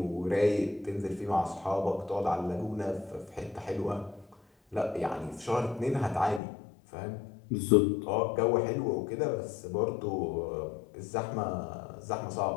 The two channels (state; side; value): drops out; right; at 6.4 s